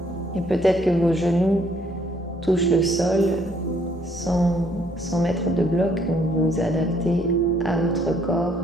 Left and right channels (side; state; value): both; normal; correlation 0.66